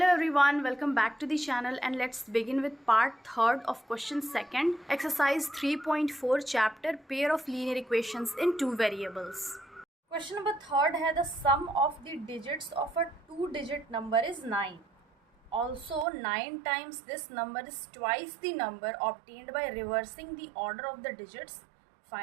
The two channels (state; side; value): drops out; left; at 16.1 s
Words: everyone, welcome back to the channel and let's begin with part 3rd of question 2nd, exercise 3.4 chapter pair of linear equations in two variables. Question number 3rd है the sum of the digits of a 2-digit number is 9. Also 9 times this number is twice the number obtained by reversing the order of the digits.